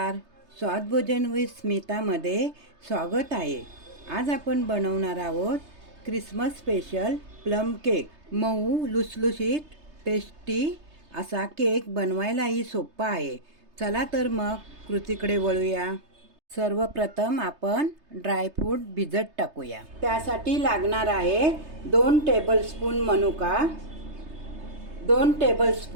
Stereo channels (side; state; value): left; late; 3.3 ms